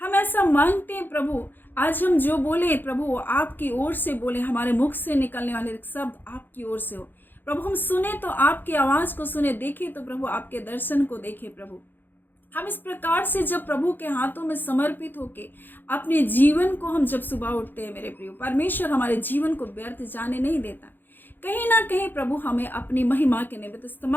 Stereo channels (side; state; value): right; late; 0.092 ms